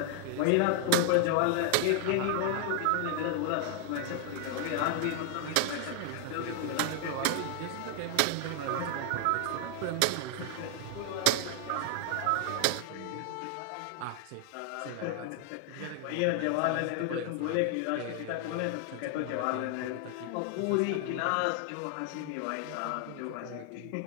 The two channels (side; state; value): both; different; correlation 0.00